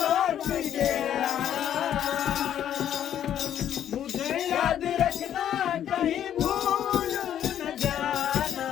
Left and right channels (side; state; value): right; quieter; 10.3 dB